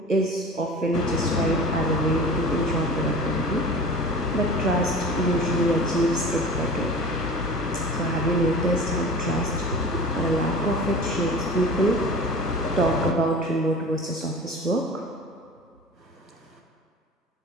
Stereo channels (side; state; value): both; normal; correlation 0.38